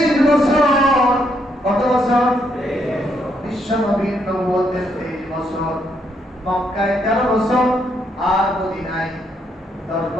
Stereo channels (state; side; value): normal; both; correlation 0.75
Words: বছর, কত বছর? বিশ্ব নবীর নবুয়তের 23 বছর, মক্কায় 13 বছর, আর মদিনায় 10